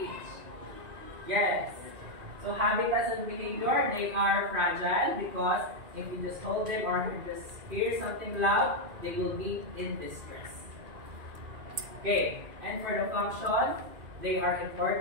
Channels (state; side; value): late; left; 2.8 ms